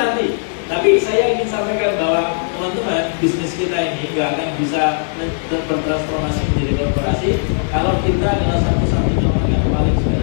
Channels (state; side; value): silent; right; digital silence